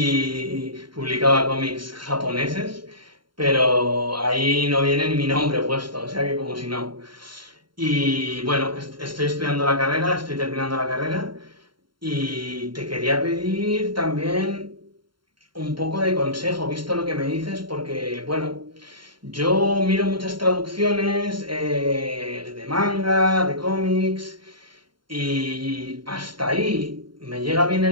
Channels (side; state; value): left; late; 0.73 ms